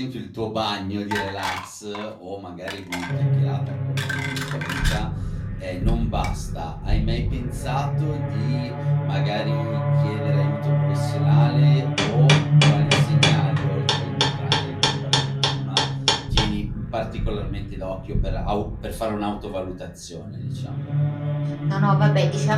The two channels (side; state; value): both; identical; correlation 1.00